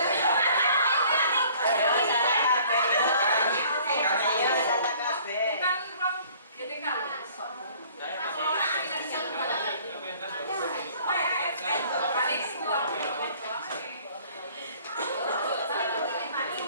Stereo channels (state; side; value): inverted; both; correlation -0.54